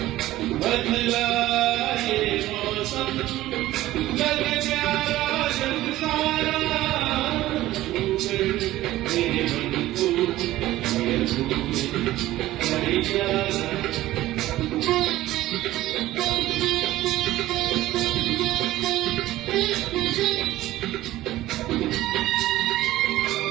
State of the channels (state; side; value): quieter; left; 15.7 dB